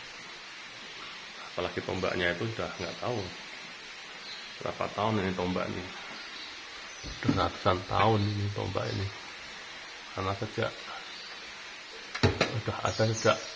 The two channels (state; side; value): identical; both; correlation 1.00